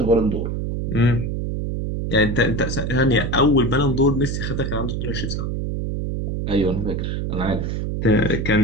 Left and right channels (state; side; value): noise; right; hum, 2 dB below the sound